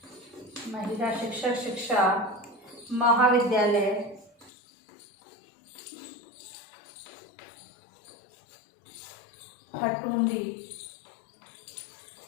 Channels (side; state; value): right; drops out; at 4.5 s